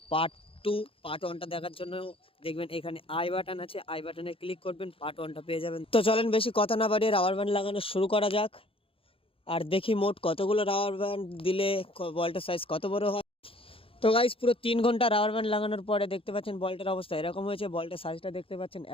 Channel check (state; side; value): late; right; 0.27 ms